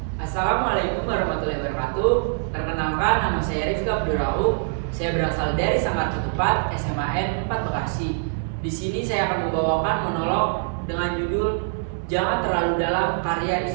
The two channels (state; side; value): silent; left; digital silence